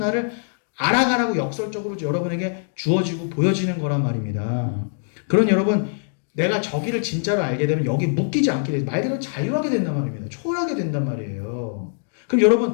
알아가라고 역설적으로 여러분에게 주어지고 보여지는 거란 말입니다. 그런 여러분 내가 저기를 진짜로 알게 되면 여기 묶이지 않게 돼요. 말 그대로 자유하게 된단 말입니다. 초월하게 된단 말이에요. 그럼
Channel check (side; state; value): right; silent; digital silence